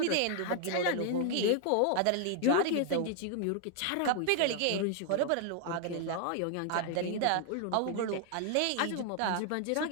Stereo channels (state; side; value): different; both; correlation 0.00